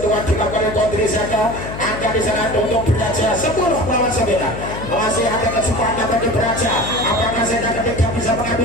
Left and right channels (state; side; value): noise; left; hum, 9 dB below the sound